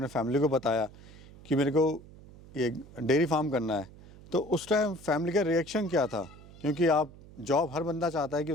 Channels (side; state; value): right; noise; hum, 20 dB below the sound